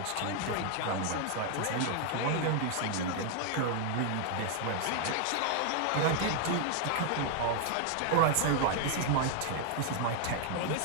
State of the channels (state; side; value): different; both; correlation 0.00